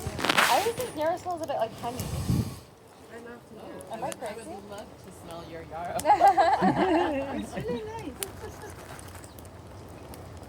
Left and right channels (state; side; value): identical; both; correlation 1.00